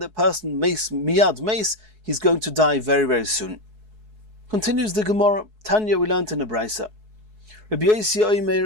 person miyad meis, he's going to die very, very soon. Continues the Gemara, Tanya we learned in the Brisa. Rabbi Yossi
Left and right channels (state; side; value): late; left; 4.7 ms